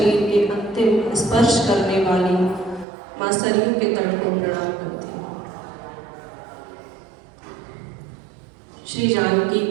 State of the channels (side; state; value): left; drops out; at 2.9 s